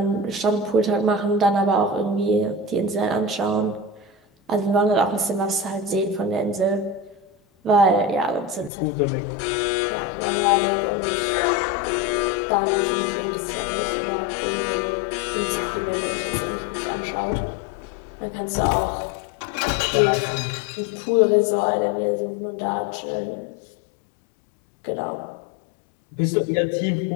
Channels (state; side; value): drops out; right; at 8.7 s